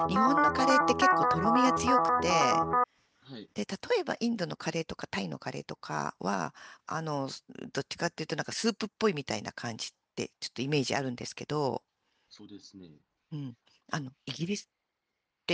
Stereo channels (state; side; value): identical; both; correlation 1.00